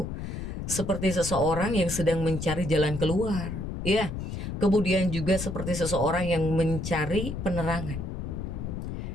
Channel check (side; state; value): left; noise; rumble, 5 dB below the sound